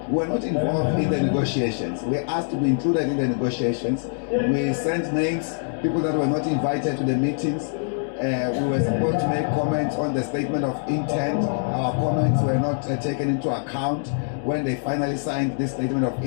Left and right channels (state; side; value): silent; right; 63 dB below the other